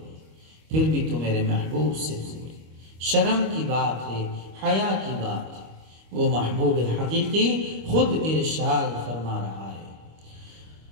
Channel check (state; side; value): late; left; 25 ms